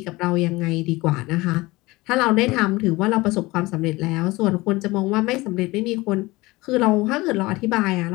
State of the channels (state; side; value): quieter; right; 21.1 dB